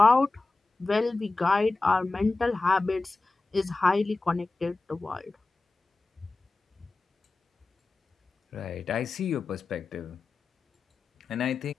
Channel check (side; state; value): right; quieter; 3.4 dB